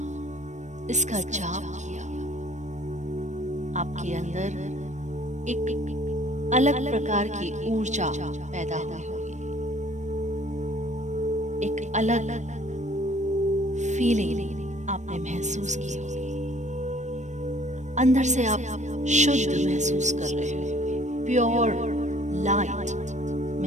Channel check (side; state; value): left; late; 0.34 ms